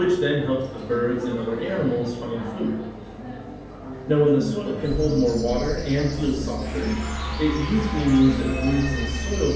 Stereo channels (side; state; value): both; identical; correlation 1.00